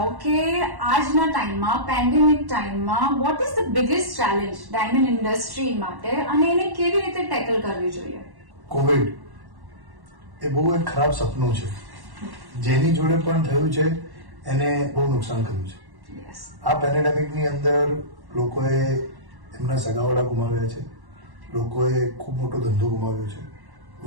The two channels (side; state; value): left; late; 1.1 ms